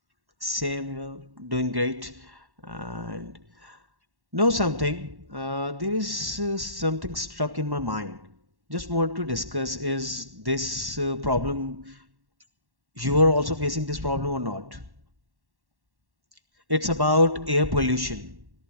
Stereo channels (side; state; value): left; late; 1.1 ms